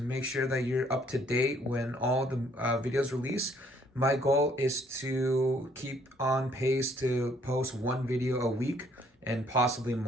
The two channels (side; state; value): both; normal; correlation 0.64